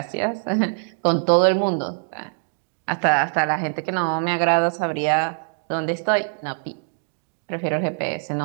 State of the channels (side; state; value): left; silent; digital silence